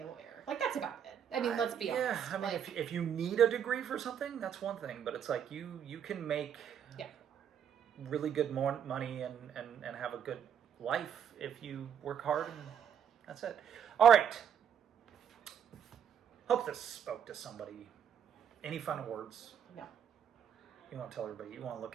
a lawyer. Like, that's about it. I mean, let's be honest. Yeah, I mean, if you need a degree for something, that's one thing. But it's like you can make really good money and have a good life if you work hard, and that's it. All right. Hope this spoke to somebody. Any final words? No. You want to tell everybody, you want to look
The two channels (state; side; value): quieter; left; 8.6 dB